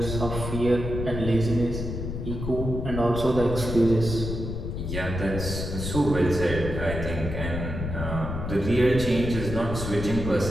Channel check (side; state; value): left; noise; rumble, 5 dB below the sound